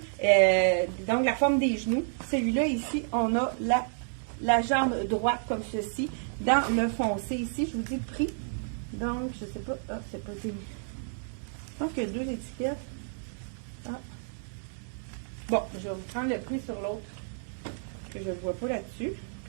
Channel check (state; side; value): silent; left; digital silence